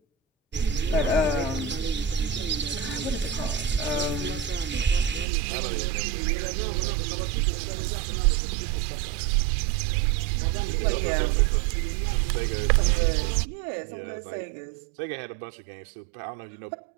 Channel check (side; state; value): left; drops out; at 5.2 s